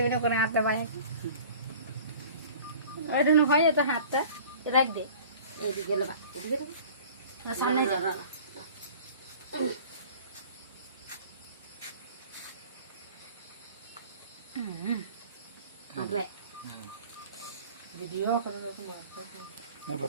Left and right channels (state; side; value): inverted; both; correlation -0.45